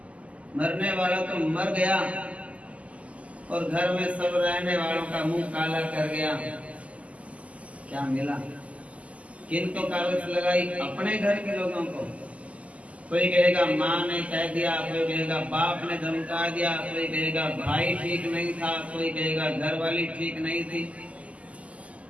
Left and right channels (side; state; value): left; late; 0.067 ms